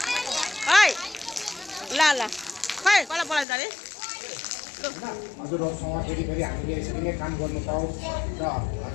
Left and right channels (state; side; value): drops out; right; at 3.5 s